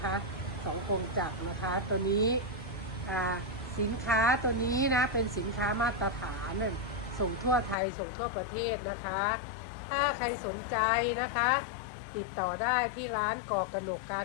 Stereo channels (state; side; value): drops out; right; at 7.8 s